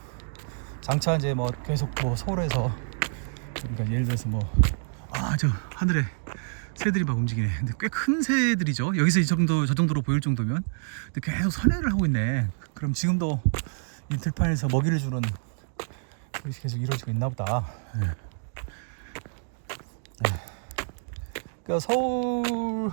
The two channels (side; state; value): left; silent; digital silence